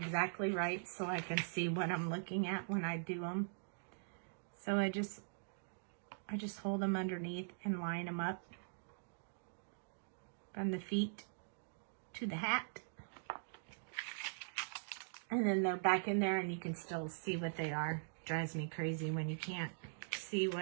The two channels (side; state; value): left; silent; digital silence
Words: right so I can see what I'm looking at when I do them. So I just hold them underneath and line them up from the feet to the hat. And then they're back in there and you can still see what they are. Drives me crazy when you can't see